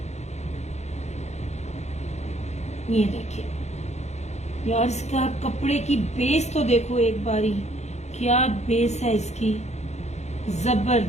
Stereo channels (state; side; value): late; right; 0.32 ms